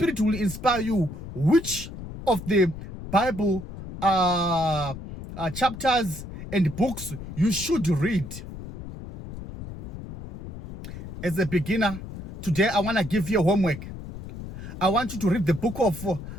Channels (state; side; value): noise; left; rumble, 11 dB below the sound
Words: will inspire you which of the Bible chapters and books you should read. As a beginner, today I want to give you a homework. I want you to read the book of